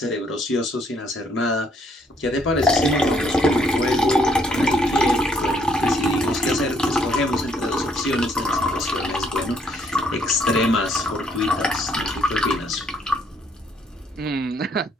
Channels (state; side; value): normal; both; correlation 0.68